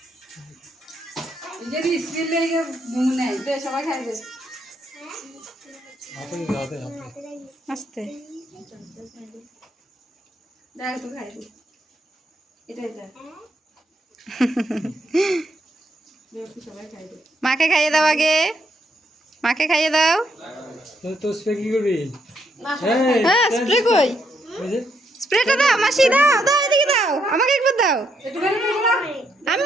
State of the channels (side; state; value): both; normal; correlation 0.76